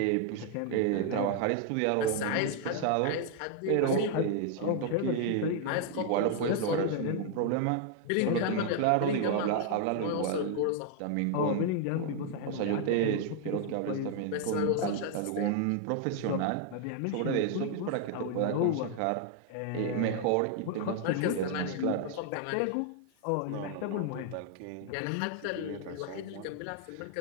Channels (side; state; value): both; different; correlation 0.00